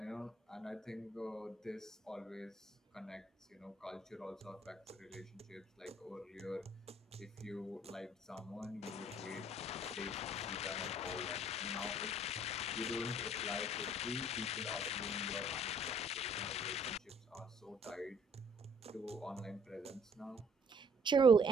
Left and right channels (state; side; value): normal; both; correlation 0.60